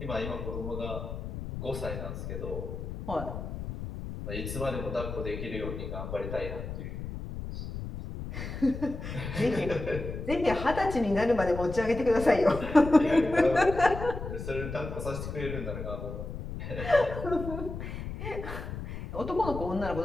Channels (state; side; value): noise; left; rumble, 7 dB below the sound